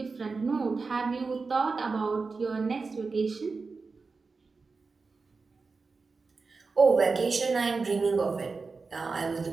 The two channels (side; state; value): left; quieter; 4.3 dB